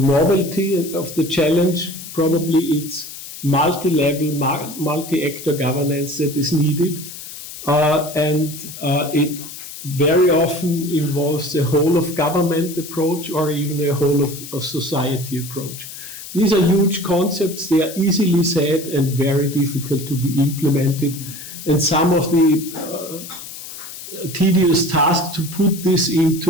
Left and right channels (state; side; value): noise; left; hiss, 12 dB below the sound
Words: of the challenge, probably it's multi-level, multi-actor governance that is needed, and it very often involves a whole of government approach or even a whole of society approach. These are huge concepts, they are easily said and very difficult to be implemented, and some of the tedious task to put this